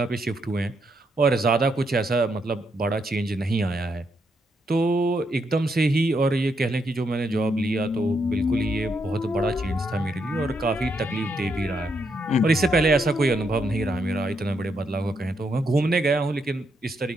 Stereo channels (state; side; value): normal; both; correlation 0.78